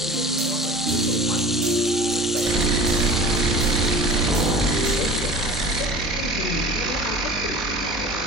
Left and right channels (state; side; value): normal; both; correlation 0.38